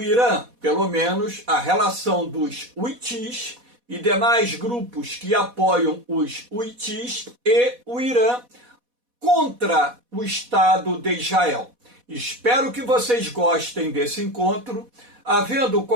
Irã, pelo menos a relação dos Houthis e demais grupos que apoiam os Houthis e o Irã contra o Estado de Israel. Espero que vocês gostem desse encontro. Havendo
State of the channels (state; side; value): late; left; 4.1 ms